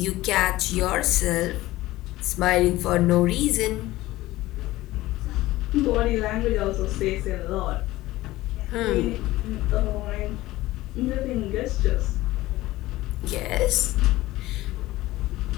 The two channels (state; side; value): quieter; right; 17.5 dB